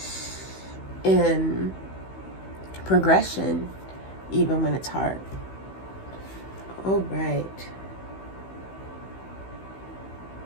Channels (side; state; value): right; late; 16 ms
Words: in progression, even when it's hard. All right.